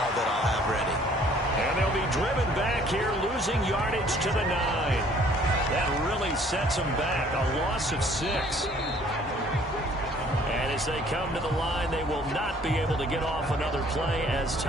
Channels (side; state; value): both; normal; correlation 0.58